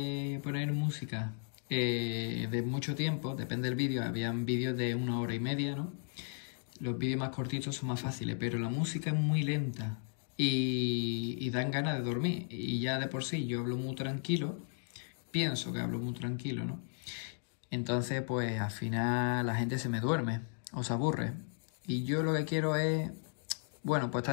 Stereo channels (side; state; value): right; silent; 54 dB below the other